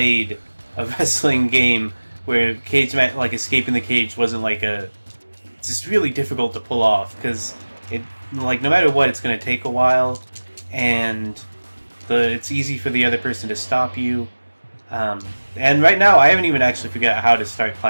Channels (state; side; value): inverted; both; correlation -1.00